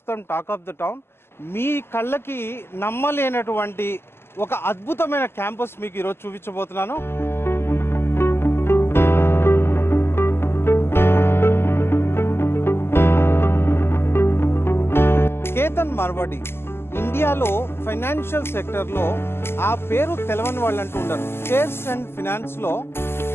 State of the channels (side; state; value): right; late; 0.12 ms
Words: talk of the town. మీ కళ్ళకి నమ్మలేనటువంటి ఒక అద్భుతమైన క్యాంపస్ మీకు ఈరోజు చూపించబోతున్నాను. కేతన్ మార్వాడి ఇండియాలో ఫైనాన్షియల్ సెక్టర్లో ఆ పేరు తెలవని వాళ్ళు అంటూ ఉండరు. షేర్స్ అండ్ ఫినాన్స్లో